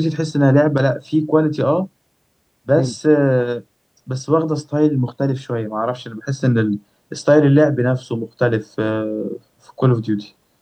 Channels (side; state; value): both; identical; correlation 1.00